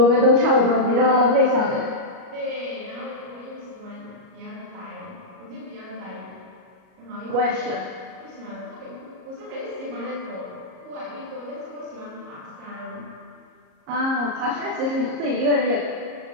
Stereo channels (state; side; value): late; left; 38 ms